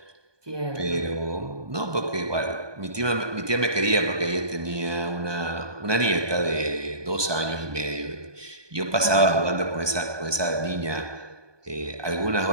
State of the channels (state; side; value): late; left; 1.2 ms